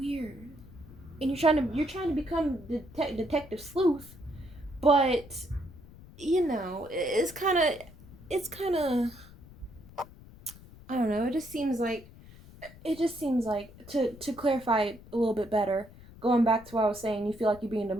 and you're trying to become detective sleuth, but it's kind of I don't know. It just seems like to clarify a little bit better, going back to what I was saying, you feel like you're being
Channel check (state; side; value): noise; left; rumble, 20 dB below the sound